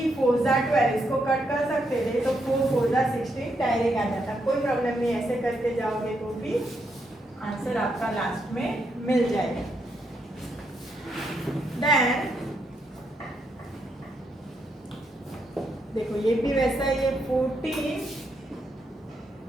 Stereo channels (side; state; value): both; normal; correlation 0.79